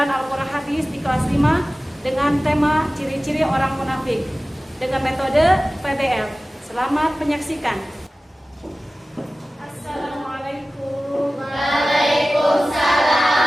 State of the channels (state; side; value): normal; both; correlation 0.97